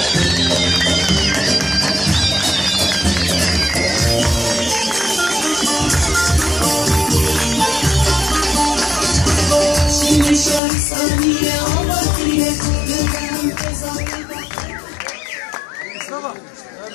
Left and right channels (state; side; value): drops out; right; at 10.6 s